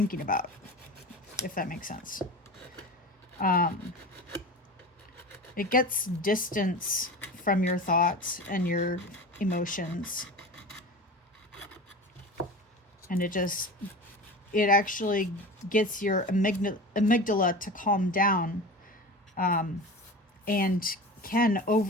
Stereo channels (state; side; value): normal; both; correlation 0.32